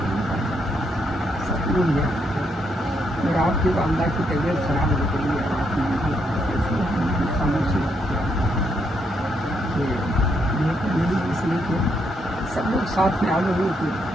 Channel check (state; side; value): normal; both; correlation 0.77